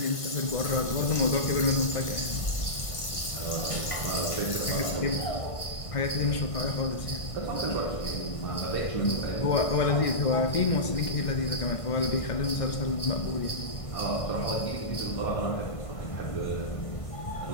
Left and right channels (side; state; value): right; late; 1.6 ms